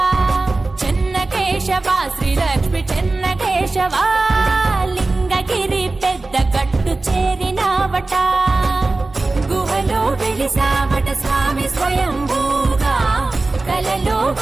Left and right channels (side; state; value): left; quieter; 3.3 dB